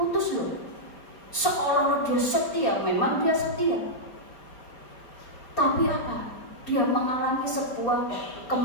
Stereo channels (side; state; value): right; late; 4.2 ms